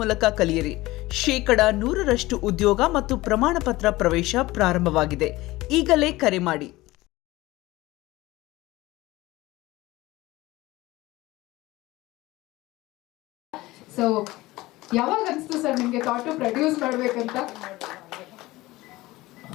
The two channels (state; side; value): quieter; right; 19.0 dB